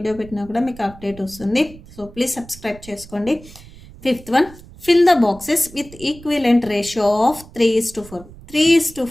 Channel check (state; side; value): noise; right; rumble, 19 dB below the sound